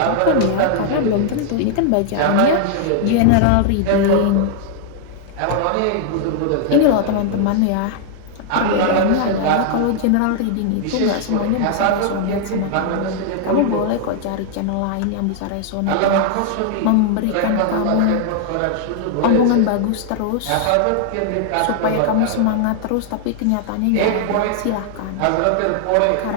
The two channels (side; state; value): both; different; correlation -0.01